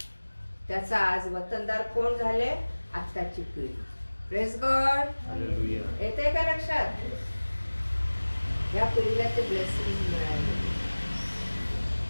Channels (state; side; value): inverted; both; correlation -1.00